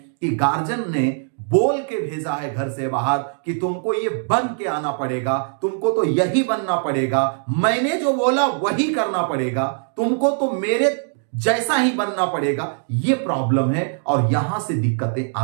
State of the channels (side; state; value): left; silent; 65 dB below the other